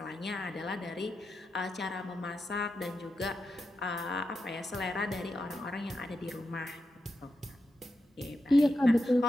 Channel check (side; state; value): both; normal; correlation 0.88